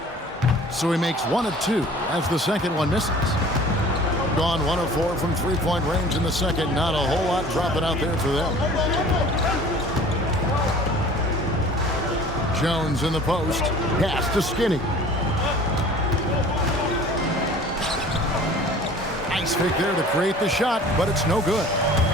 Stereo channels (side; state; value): both; normal; correlation 0.47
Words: So he makes 1 of 2 as the second one misses. Gone 1 of 4 from three-point range in the second. Not a whole lot dropping out there for them. Jones in the post. Pass to Skinny. Nice fake there to create the shot, but it's no good.